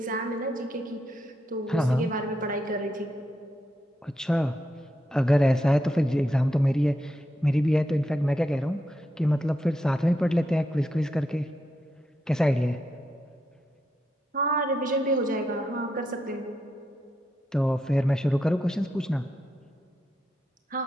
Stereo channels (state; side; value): normal; both; correlation 0.84